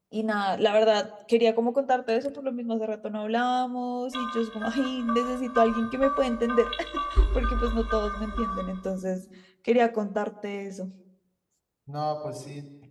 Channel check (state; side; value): identical; both; correlation 1.00